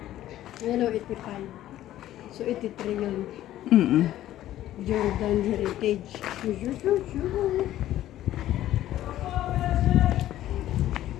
Ano, 85. So 83 yun. Mm-mm. Jordan Heritage.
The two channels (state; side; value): quieter; right; 13.4 dB